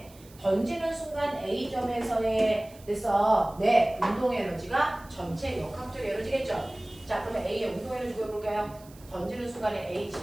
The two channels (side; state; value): right; noise; hiss, 24 dB below the sound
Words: 던지는 순간 A점에서의 됐어. 네, 운동 에너지가 전체 역학적 에너지겠죠. 자, 그러면 A의 운동 에너지 구해볼까요? 던지는 순간에 A